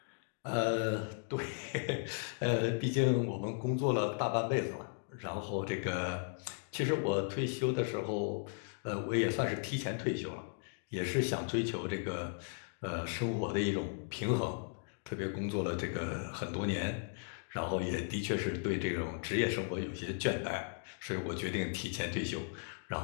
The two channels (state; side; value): silent; right; digital silence